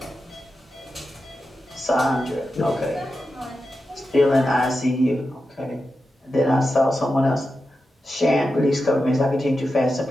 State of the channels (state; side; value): normal; both; correlation 0.90